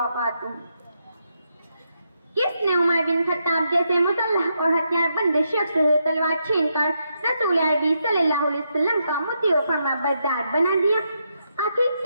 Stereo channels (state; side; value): inverted; both; correlation -0.81